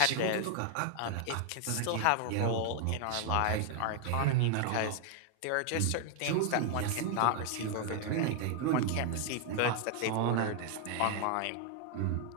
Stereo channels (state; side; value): different; both; correlation 0.00